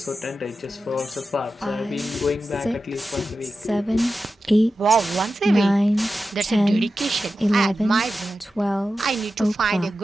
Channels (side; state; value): both; normal; correlation 0.92